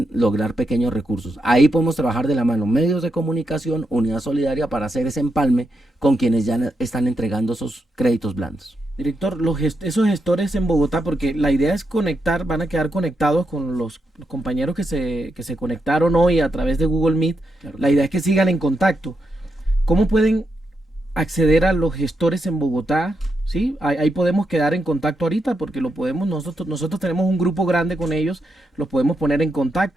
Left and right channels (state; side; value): normal; both; correlation 0.84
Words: lograr pequeños recursos. Ahí podemos trabajar de la mano medios de comunicación, Unidad Solidaria, para hacer ese empalme con quienes ya están entregando esos créditos blandos. Director, esos gestores en Bogotá, porque la idea es conectar, van a quedar conectados con los compañeros que se conectaron hoy a través de Google Meet. Claro. La idea es que sigan en contacto. ¿Cómo pueden acceder a los gestores en Bogotá? ¿Sí? Ahí podemos quedar en contacto ahorita porque lo podemos, nosotros tenemos un grupo grande con ellos, los podemos poner en